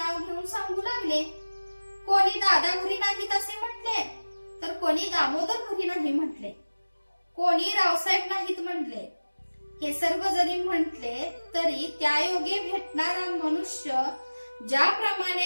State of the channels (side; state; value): both; inverted; correlation -1.00